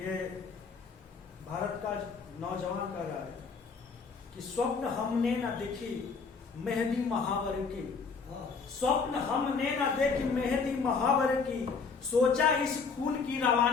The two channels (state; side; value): quieter; right; 5.0 dB